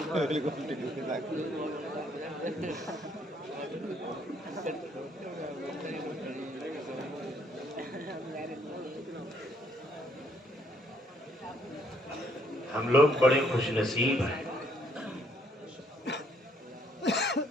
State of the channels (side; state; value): both; normal; correlation 0.68